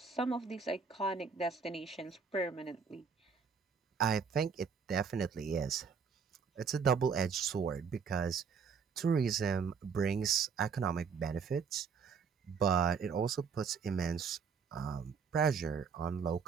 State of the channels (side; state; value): left; quieter; 6.0 dB